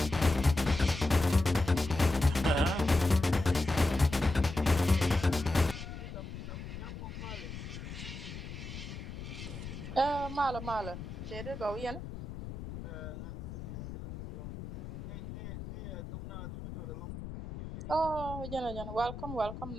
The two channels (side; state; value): left; noise; rumble, 9 dB below the sound